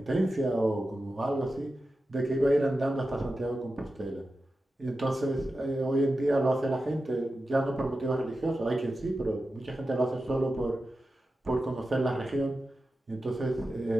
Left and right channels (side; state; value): both; normal; correlation 0.92